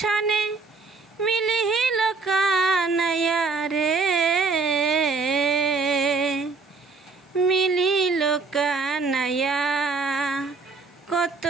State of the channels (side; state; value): left; quieter; 4.4 dB